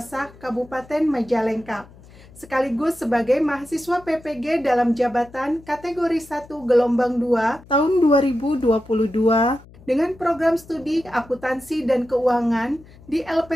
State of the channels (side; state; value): left; noise; hum, 23 dB below the sound